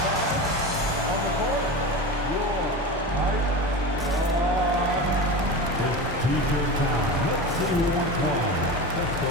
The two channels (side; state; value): both; normal; correlation 0.26